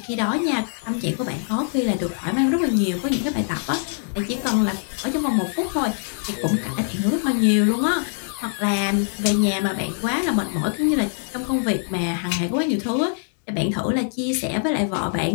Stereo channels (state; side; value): silent; right; digital silence